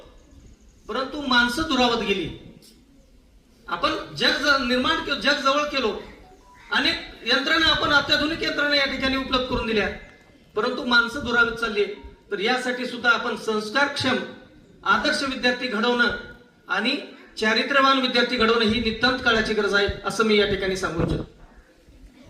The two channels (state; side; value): identical; both; correlation 1.00